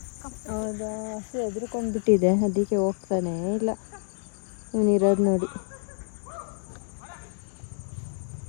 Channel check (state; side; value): silent; right; digital silence